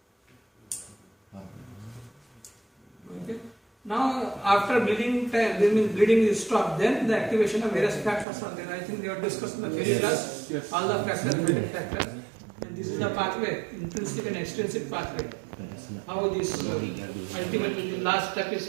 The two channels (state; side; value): drops out; left; at 8.2 s